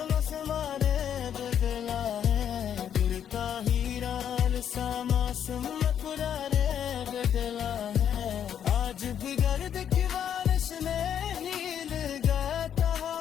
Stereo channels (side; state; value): right; quieter; 9.1 dB